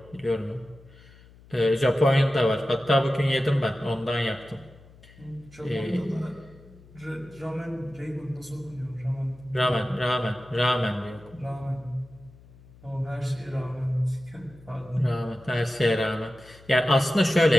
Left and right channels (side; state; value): left; noise; hum, 24 dB below the sound